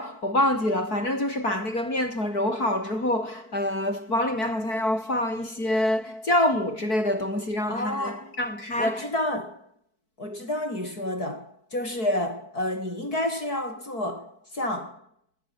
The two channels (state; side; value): late; right; 4.6 ms